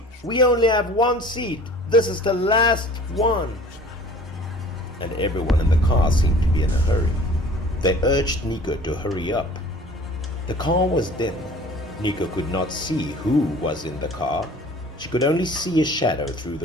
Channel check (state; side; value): normal; both; correlation 0.47